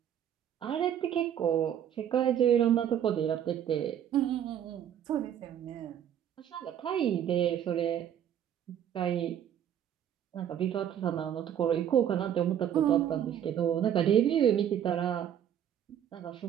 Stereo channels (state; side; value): quieter; left; 9.8 dB